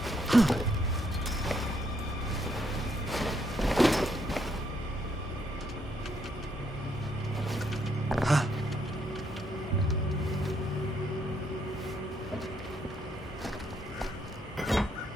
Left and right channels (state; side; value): normal; both; correlation 0.73